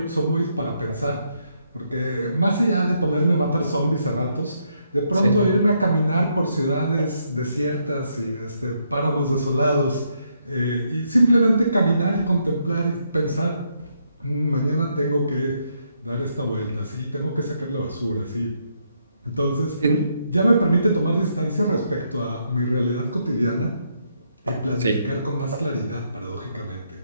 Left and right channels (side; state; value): both; inverted; correlation -0.76